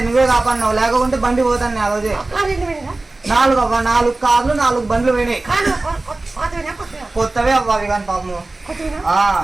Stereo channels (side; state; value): left; quieter; 3.1 dB